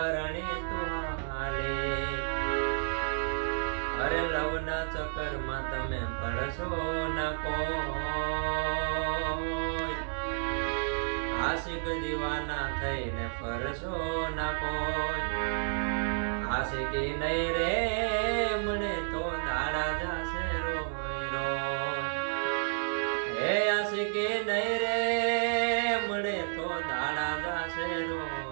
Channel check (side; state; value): left; silent; digital silence